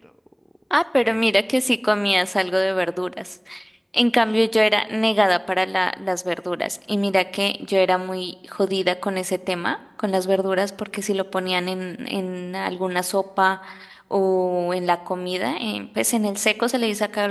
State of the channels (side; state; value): both; identical; correlation 1.00